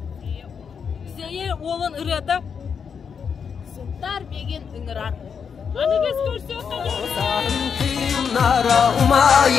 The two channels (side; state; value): right; quieter; 6.6 dB